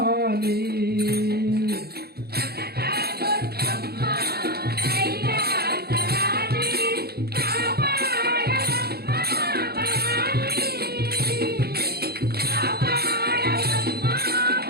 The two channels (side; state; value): left; late; 0.46 ms